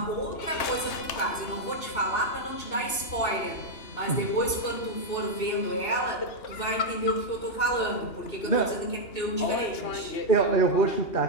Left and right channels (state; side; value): late; right; 2.9 ms